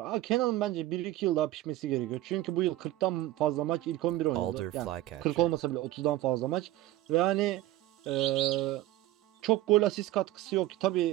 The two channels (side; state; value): left; quieter; 15.5 dB